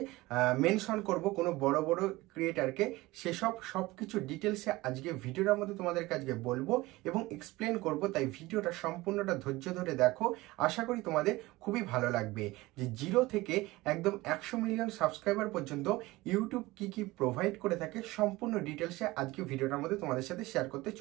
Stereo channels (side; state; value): left; quieter; 20.0 dB